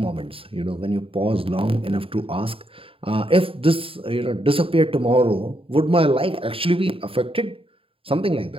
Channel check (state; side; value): late; left; 0.27 ms